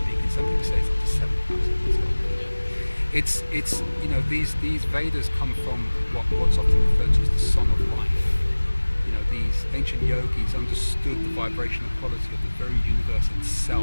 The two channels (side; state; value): both; inverted; correlation -1.00